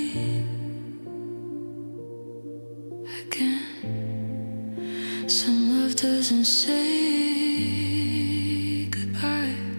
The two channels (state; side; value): inverted; both; correlation -1.00